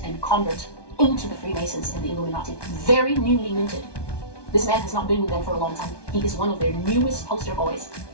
and convert into the Freemasons and the Illuminati. Very newly minted. This man has not been with them for a long time. He is one of their newest poster boys.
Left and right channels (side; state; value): right; late; 1.2 ms